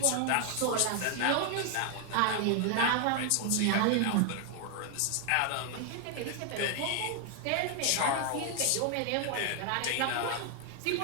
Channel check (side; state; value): both; different; correlation 0.00